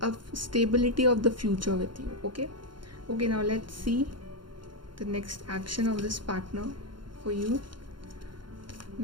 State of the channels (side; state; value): left; late; 0.72 ms